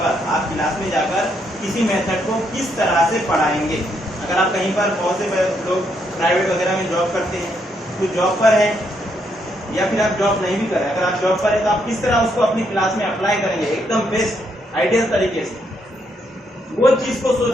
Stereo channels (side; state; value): both; normal; correlation 0.76